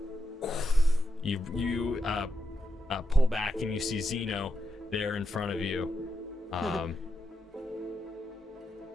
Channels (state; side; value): normal; both; correlation 0.85